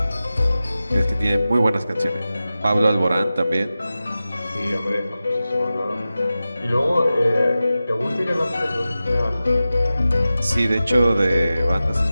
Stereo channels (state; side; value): inverted; both; correlation -0.95